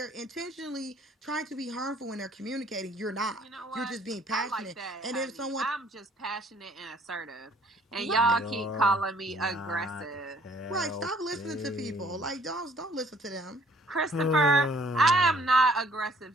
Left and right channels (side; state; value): both; normal; correlation 0.60